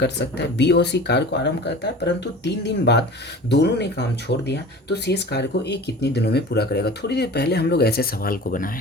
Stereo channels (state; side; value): normal; both; correlation 0.39